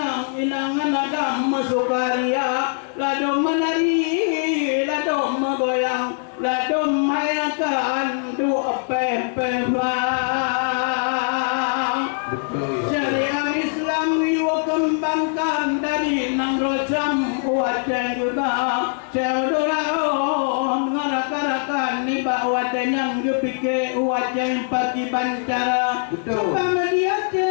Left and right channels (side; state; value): right; silent; 58 dB below the other